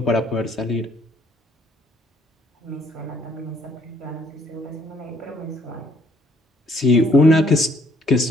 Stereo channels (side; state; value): both; normal; correlation 0.65